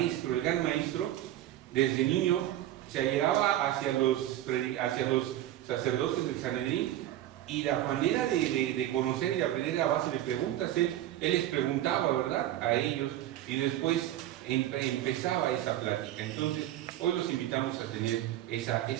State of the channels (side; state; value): left; quieter; 13.3 dB